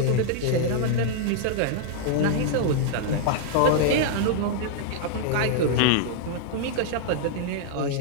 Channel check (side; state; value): both; different; correlation -0.01